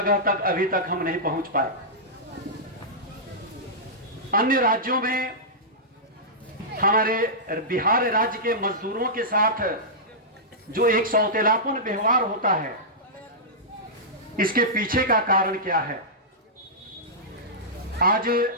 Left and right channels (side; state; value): both; normal; correlation -0.14